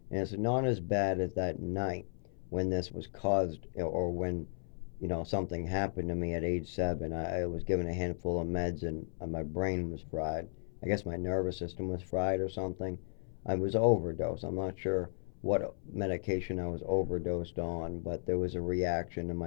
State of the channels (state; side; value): silent; right; 54 dB below the other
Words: And it's not as bad as that night when this was caused, or when, something happened to me at age 7. I was given a handful of meds and my brain was fried. I guess my nervous system was fried or something. I was overdosed. I'm not sure what medication I was overdosed on, but there was a reaction, and